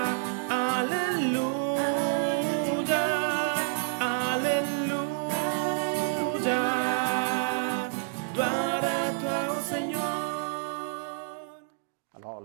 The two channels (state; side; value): silent; left; digital silence